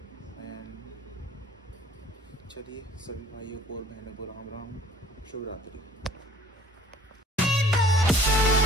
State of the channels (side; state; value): both; normal; correlation 0.52